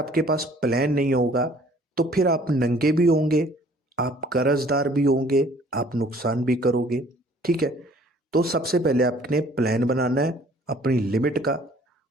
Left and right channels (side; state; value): both; normal; correlation 0.56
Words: पास प्लान नहीं होगा तो फिर आप नंगे भी होंगे, आप कर्जदार भी होंगे, आप नुकसान भी करोगे, ठीक है। तो सबसे पहले आपने प्लान बनाना है अपनी लिमिट का